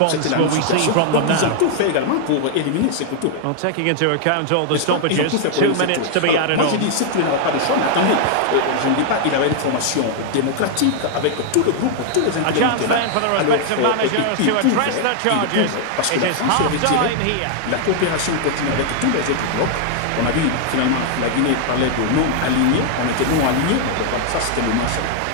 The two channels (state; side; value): different; both; correlation 0.00